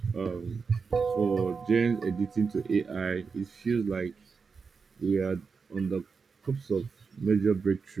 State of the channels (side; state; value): left; quieter; 5.2 dB